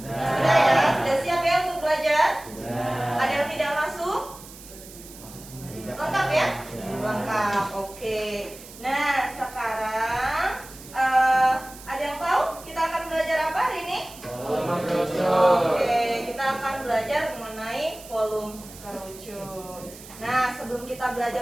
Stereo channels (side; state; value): right; noise; hiss, 17 dB below the sound